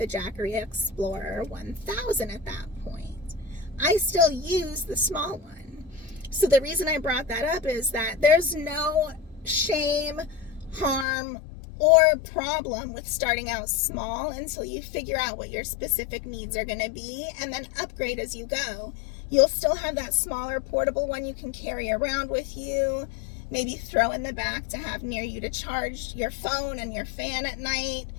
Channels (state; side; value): drops out; right; at 11.1 s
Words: Jackery Explorer 1000 at that point. I still use the small one. So the reason I brought that up is that there's no shame, harm, or problem with starting out small until you figure out what your specific needs are going to be and then upgrade as you go. You'll still have that smaller portable one you can carry around with you, maybe throw in the back to have near you to charge your phone and your fan at night,